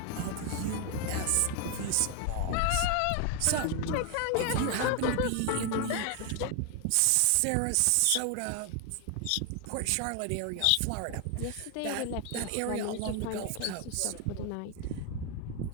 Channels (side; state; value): both; different; correlation 0.01